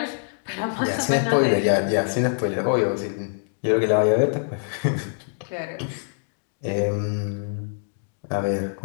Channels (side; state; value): right; silent; digital silence